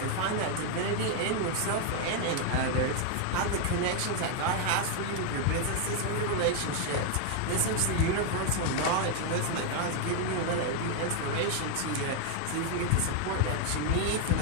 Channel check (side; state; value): both; different; correlation 0.00